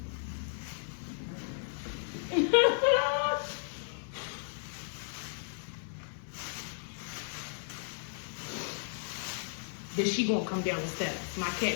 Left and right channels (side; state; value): right; silent; digital silence